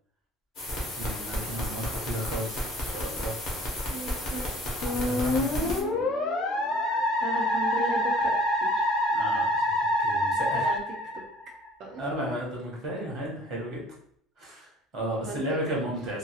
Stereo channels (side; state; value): both; normal; correlation 0.51